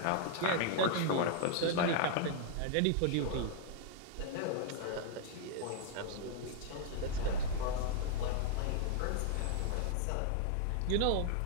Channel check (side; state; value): both; different; correlation 0.00